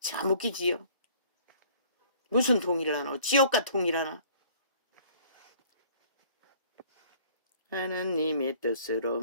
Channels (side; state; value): both; inverted; correlation -0.55